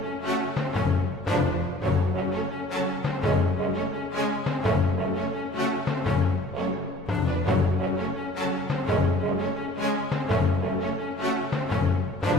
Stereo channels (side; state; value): both; normal; correlation 0.50